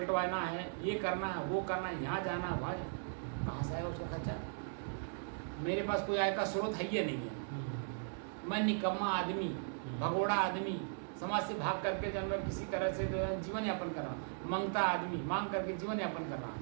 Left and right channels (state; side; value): silent; left; digital silence